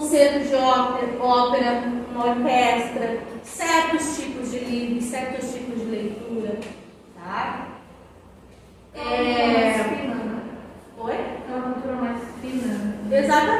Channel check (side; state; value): both; identical; correlation 1.00